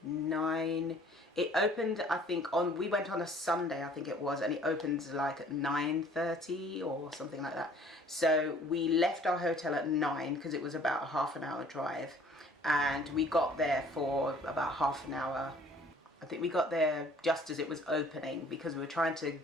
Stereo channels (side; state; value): both; normal; correlation 0.55